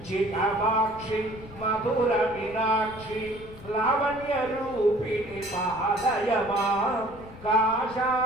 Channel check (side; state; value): left; noise; rumble, 18 dB below the sound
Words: मधुर मीनाक्षी लावण्य रूपिणी पालय मां